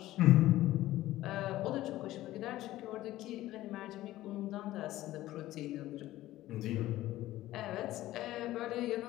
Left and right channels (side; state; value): right; quieter; 15.5 dB